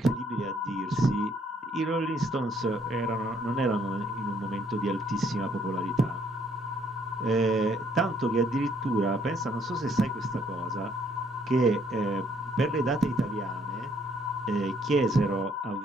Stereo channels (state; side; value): normal; both; correlation 0.66